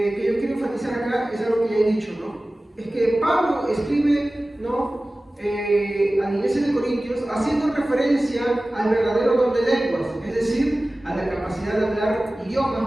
yo quiero enfatizar acá es algo que ya he dicho, ¿no? Es que Pablo escribe, ¿no? A la iglesia de Corintios haciendo referencia al verdadero don de lenguas, es decir, a la capacidad de hablar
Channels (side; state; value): both; normal; correlation 0.97